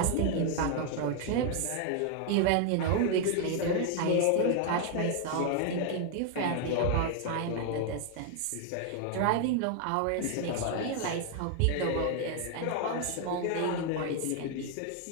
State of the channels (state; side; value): different; both; correlation 0.00